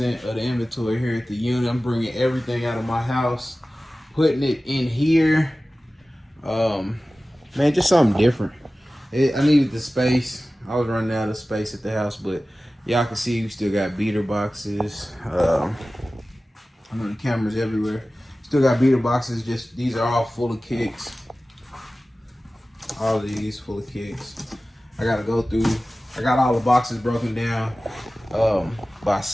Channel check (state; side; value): normal; both; correlation 0.96